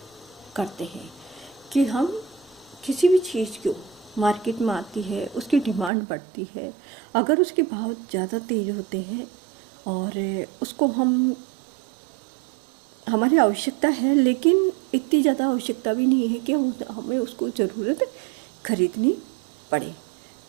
करते हैं। कि हम किसी भी चीज़ को मार्केट में आती है, उसकी डिमांड बढ़ती है, अगर उसके भाव ज़्यादा तेज़ होते हैं और उसको हमारी आवश्यकता है, लेकिन इतनी ज़्यादा आवश्यकता भी नहीं है कि हमें उसको ज़रूरत खरीदनी पड़े,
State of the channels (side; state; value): left; drops out; at 5.9 s